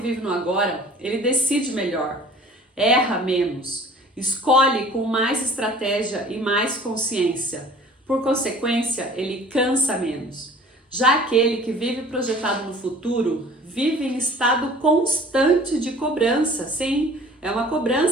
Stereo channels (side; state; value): both; normal; correlation 0.48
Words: no agora, ele decide melhor, erra menos, escolhe com mais estratégia e mais consciência. Por consequência, ele cansa menos. Já aquele que vive projetado no futuro, vive em estado constante de cobrança. Sim, é uma